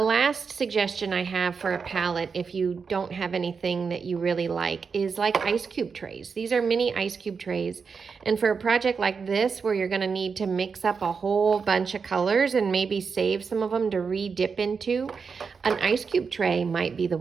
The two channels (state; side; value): quieter; left; 5.5 dB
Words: last suggestion I have for a palette, if you don't have anything that you really like, is like ice cube trays. These are mini ice cube trays. And for a project like this, where you're going to need to mix up a whole bunch of colors and maybe save some of them to re-dip into, an ice cube tray might be the